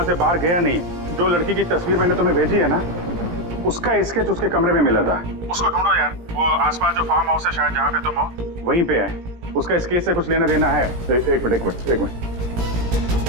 से बाहर गया नहीं। जो लड़की की तस्वीर मैंने तुम्हें भेजी है ना, उसका स्केच उसके कमरे में मिला था। उसको ढूंढो यार, वो आसपास जो फार्म हाउस है शायद जहाँ पे तुम हो, वहीं पे है। उसका स्केच से कुछ लेना देना है। एक मिनट।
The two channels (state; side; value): late; left; 17 ms